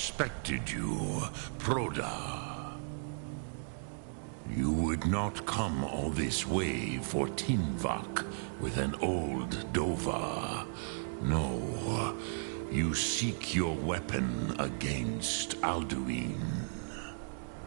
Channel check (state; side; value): silent; left; digital silence